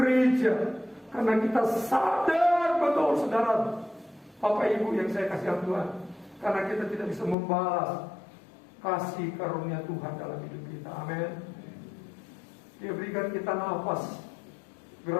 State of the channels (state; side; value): drops out; right; at 7.4 s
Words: karena kita sadar betul, saudara, Bapak Ibu yang saya kasih Tuhan, karena kita tidak bisa membalas kasih karunia Tuhan dalam hidup kita. Amin. Dia berikan kita nafas